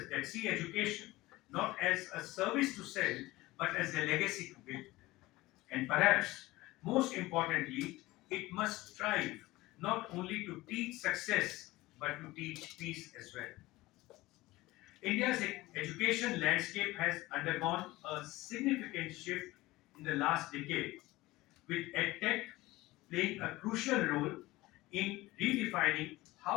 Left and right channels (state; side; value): quieter; right; 19.1 dB